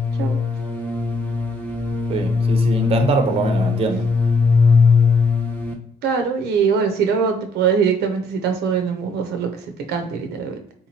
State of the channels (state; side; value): normal; both; correlation 0.66